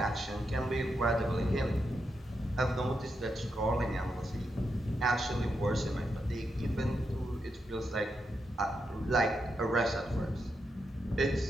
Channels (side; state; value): both; normal; correlation 0.84